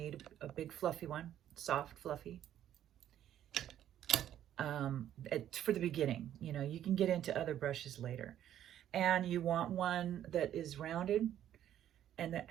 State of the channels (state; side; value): quieter; left; 11.2 dB